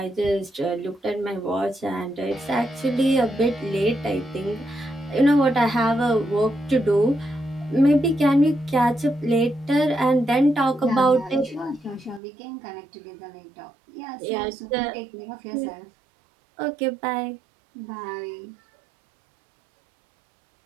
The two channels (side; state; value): left; drops out; at 12.2 s